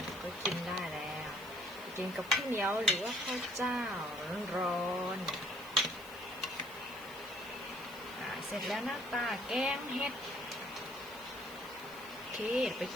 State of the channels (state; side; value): noise; left; hiss, 19 dB below the sound